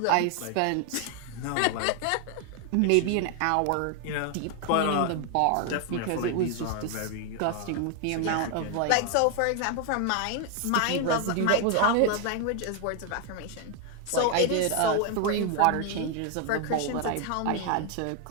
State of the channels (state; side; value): different; both; correlation 0.00